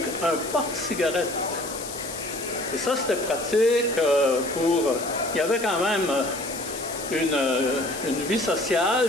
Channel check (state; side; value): noise; left; hiss, 10 dB below the sound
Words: un porte-cigarette. Et ça, c'était pratique pour... Il y avait quand même une vie